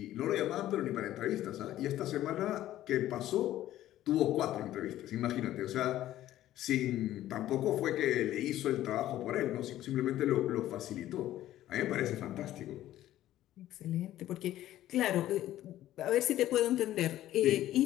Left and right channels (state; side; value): quieter; right; 13.7 dB